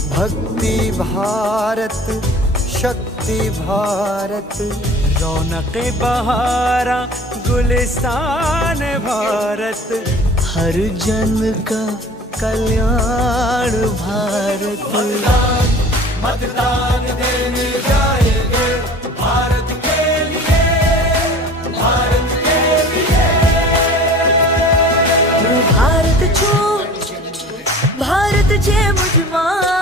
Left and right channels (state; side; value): normal; both; correlation 0.43